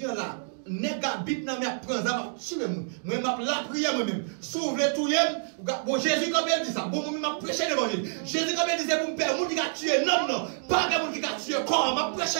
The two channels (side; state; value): left; silent; digital silence